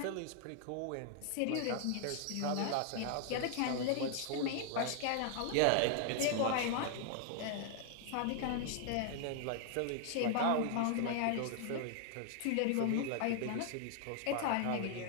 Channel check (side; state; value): both; different; correlation 0.00